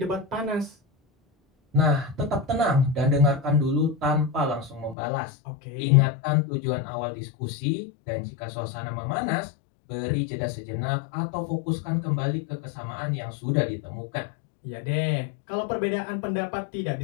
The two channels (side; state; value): right; drops out; at 5.0 s